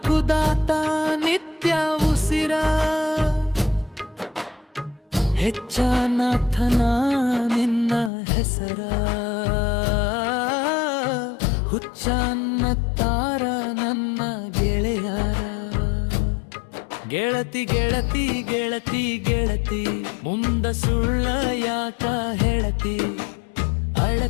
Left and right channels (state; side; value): drops out; right; at 8.1 s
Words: ನಿತ್ಯ ಉಸಿರ ಹೆಚ್ಚನಾಥನ ನಿನ್ನ ಹೆಸರ ಹುಚ್ಚನ್ನತ್ತಾರ ನನ್ನ ಗೆಳೆಯರ ಗೆಳತಿ ಗೆಳತಿ ಗೆಳತಿ ಗೆಳತಿ ಮುಂದ ಸುಳ್ಳ ಯಾಕ ಹೇಳತಿ